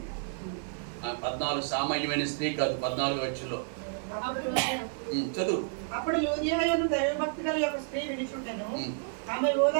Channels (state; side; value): silent; left; 55 dB below the other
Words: 14 సామాన్యమైన స్త్రీ కాదు, 14 వచ్చులో చదువు. అప్పుడు యూదియాయను దైవభక్తి గల ఒక స్త్రీ వినిచుండెను. ఆమె